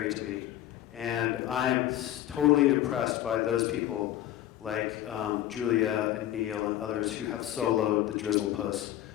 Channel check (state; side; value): quieter; right; 13.0 dB